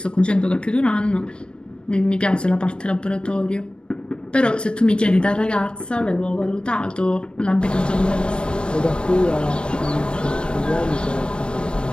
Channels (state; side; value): late; right; 0.056 ms